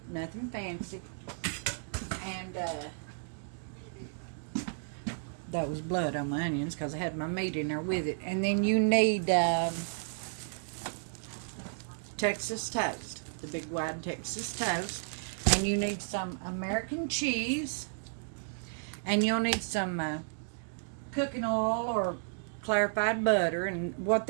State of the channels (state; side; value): silent; left; digital silence